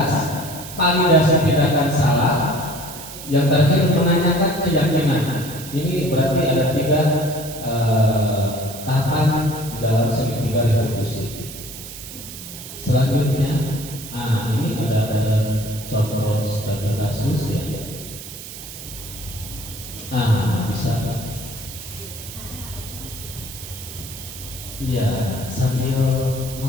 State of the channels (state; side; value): noise; right; hiss, 12 dB below the sound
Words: validasi tindakan salah, yang terakhir menanyakan keyakinan. Ini berarti ada 3 tahapan di dalam segitiga restitusi. Selanjutnya, ini ada contoh studi kasus ya. Bisa. Iya, sambil